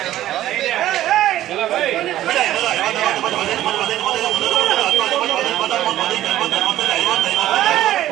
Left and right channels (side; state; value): left; quieter; 13.5 dB